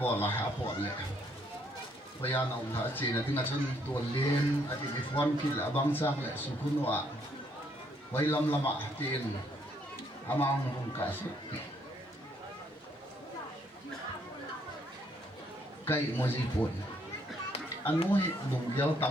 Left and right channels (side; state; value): both; normal; correlation 0.69